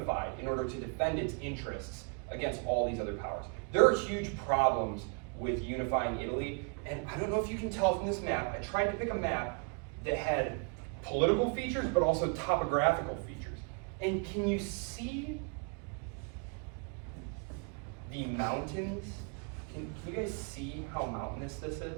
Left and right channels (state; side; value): quieter; left; 37.4 dB